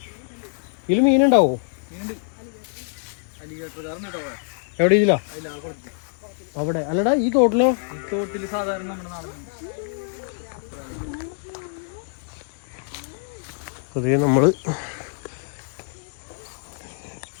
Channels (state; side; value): silent; right; digital silence